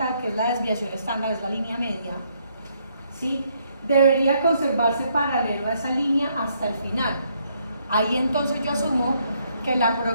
que es la desviación estándar, es la línea media, ¿sí? Debería conservarse paralelo a esa línea hasta el final. Ahí entonces yo asumo que la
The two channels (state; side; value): inverted; both; correlation -0.72